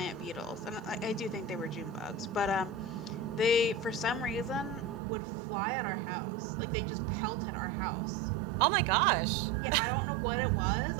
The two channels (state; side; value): drops out; left; at 5.0 s